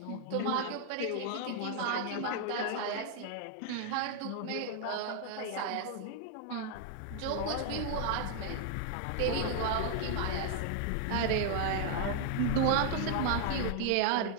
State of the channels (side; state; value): both; different; correlation 0.00